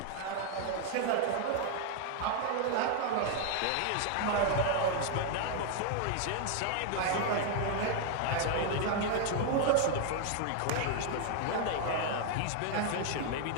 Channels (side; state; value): both; different; correlation 0.00